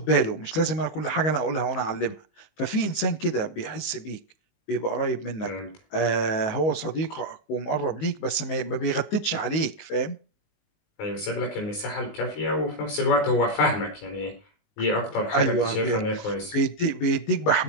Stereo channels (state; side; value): late; right; 19 ms